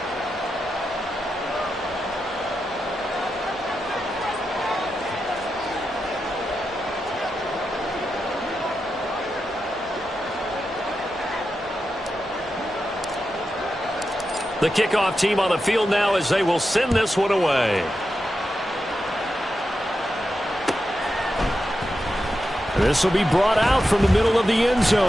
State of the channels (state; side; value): normal; both; correlation 0.89